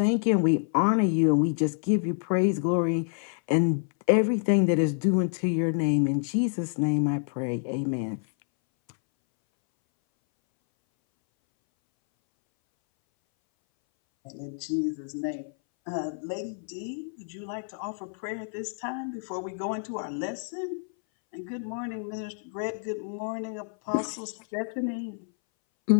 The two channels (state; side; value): silent; right; 59 dB below the other